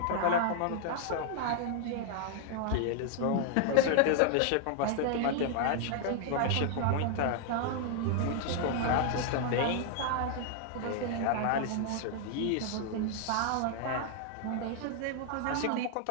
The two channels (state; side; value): different; both; correlation 0.00